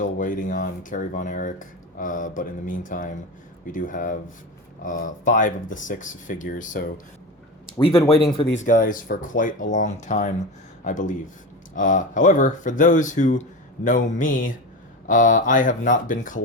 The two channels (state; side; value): normal; both; correlation 0.25